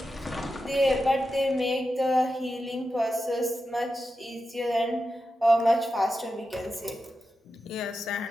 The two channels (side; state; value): both; normal; correlation 0.90